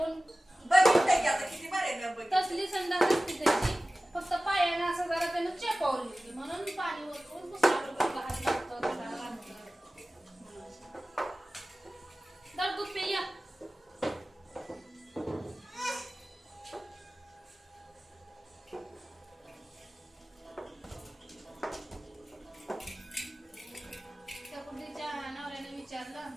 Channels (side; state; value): both; normal; correlation 0.97